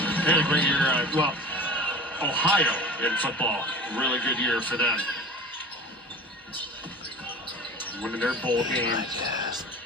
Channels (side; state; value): both; normal; correlation 0.38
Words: they had a great year. Well, Ohio in football, really good year for them. Winning their bowl game.